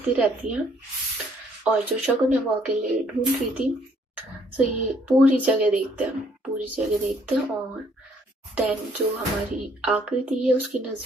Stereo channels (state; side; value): normal; both; correlation 0.65